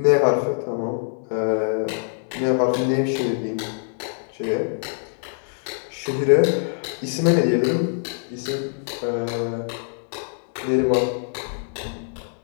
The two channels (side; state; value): right; silent; digital silence